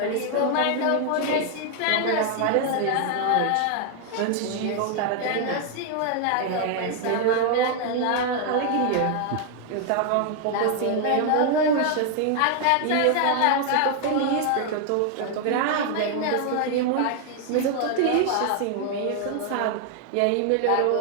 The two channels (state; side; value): different; both; correlation 0.00